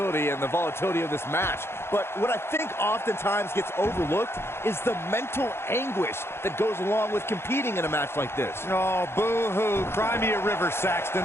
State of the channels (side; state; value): right; late; 0.12 ms